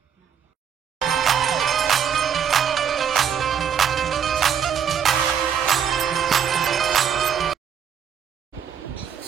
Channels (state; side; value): quieter; left; 8.0 dB